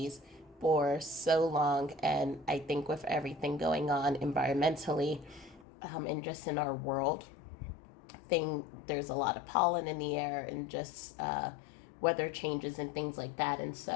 for so long, and I think with everything going on environmentally and just in our world, there's a lot of pollen in the air and just weather changes and things like that. And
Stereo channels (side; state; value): right; drops out; at 5.7 s